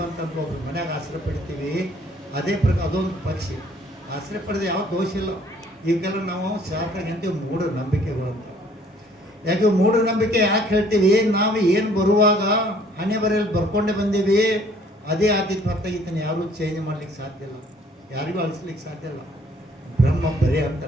ಬಂತಂತ ಒಬ್ರು ಮನ್ಯಾಗ ಆಶ್ರಯ ಪಡಿತೀವಿ, ಅದೇ ಪ್ರಕಾರ ಅದೊಂದು ಪಕ್ಷಿ. ಆಶ್ರಯ ಪಡೆದ ಯಾವ ದೋಷ ಇಲ್ಲ. ಈಗೆಲ್ಲ ನಾವು ಶಾಸ್ತ್ರ ಅಂತೀವಿ ಮೂಢನಂಬಿಕೆಗಳು ಅಂತ. ಯಾಕೆ ಮೂಢನಂಬಿಕೆ ಯಾಕೆ ಹೇಳ್ತೀವಿ? ನಾವು ಏನು ಬರುವಾಗ ಹಣೆ ಬರೆಯಲ್ಲಿ ಬರ್ಕೊಂಡೇ ಬಂದೀವಿ, ಅದೇ ಆದಿತ್ಯ ಹೊರತಾಗಿದ್ದಾನೆ. ಯಾರೂ ಚೇಂಜ್ ಮಾಡ್ಲಿಕ್ಕೆ ಸಾಧ್ಯ ಇಲ್ಲ, ಯಾರಿಗೂ ಅಳಿಸ್ಲಿಕ್ಕೆ ಸಾಧ್ಯ ಇಲ್ಲ. ಬ್ರಹ್ಮ ಬರೇ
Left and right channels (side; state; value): both; normal; correlation 0.59